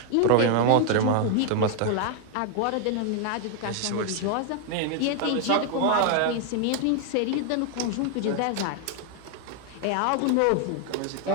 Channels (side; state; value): both; different; correlation 0.00